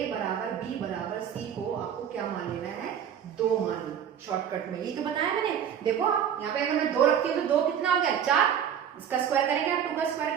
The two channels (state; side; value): quieter; left; 8.8 dB